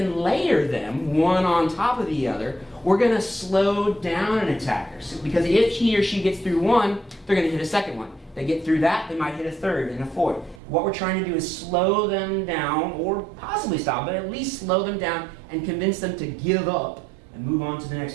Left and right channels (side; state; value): left; drops out; at 10.6 s